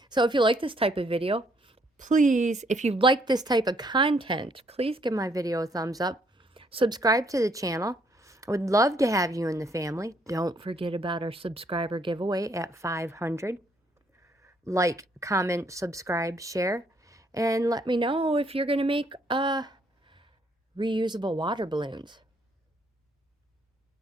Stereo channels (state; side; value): normal; both; correlation 0.69